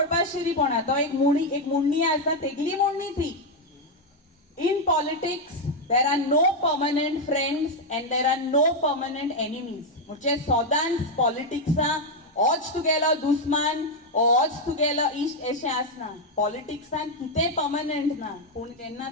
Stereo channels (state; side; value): normal; both; correlation 0.03